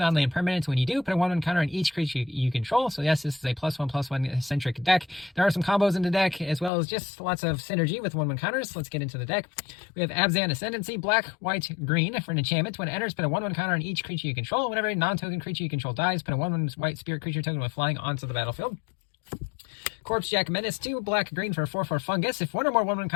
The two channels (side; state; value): right; drops out; at 6.7 s